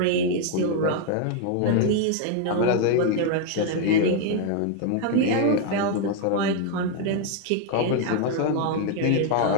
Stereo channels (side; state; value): both; different; correlation 0.01